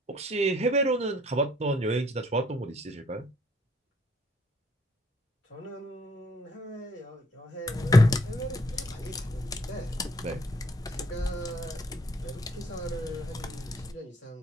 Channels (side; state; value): both; normal; correlation 0.65